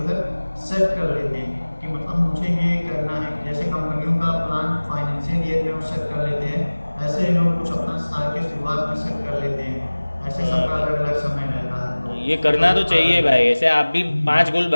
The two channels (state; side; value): inverted; both; correlation -1.00